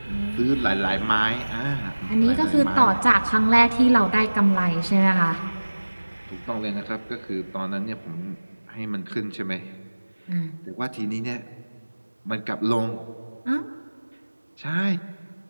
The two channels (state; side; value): inverted; both; correlation -1.00